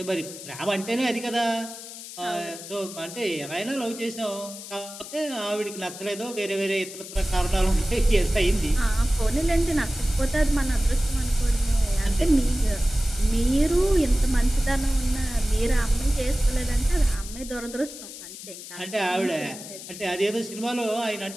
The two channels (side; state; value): left; noise; hiss, 13 dB below the sound